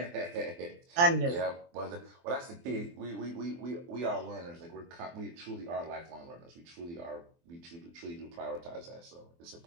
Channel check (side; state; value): left; late; 23 ms